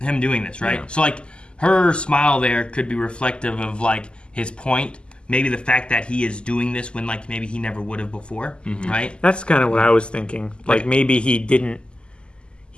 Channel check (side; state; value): right; late; 0.050 ms